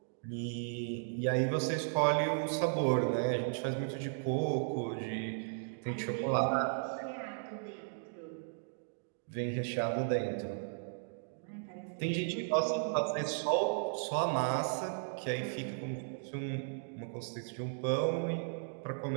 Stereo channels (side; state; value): left; silent; digital silence